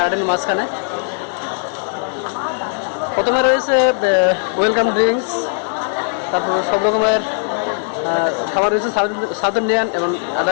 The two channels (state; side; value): silent; right; digital silence